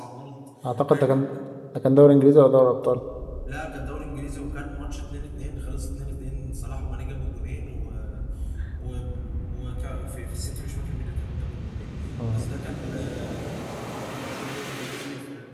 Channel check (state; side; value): identical; both; correlation 1.00